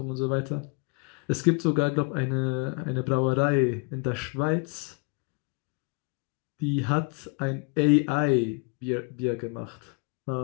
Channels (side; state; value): right; quieter; 34.2 dB